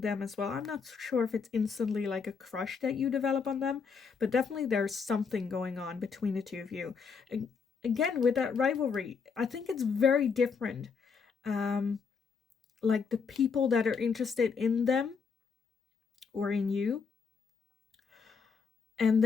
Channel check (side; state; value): right; quieter; 5.6 dB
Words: as well. I'm not sure if it's instantly like a crush that you develop on them, but definitely there's something going on between the two of you. Again, with that rivalry, I think it's very different. Like the people that are interested in them or in you, and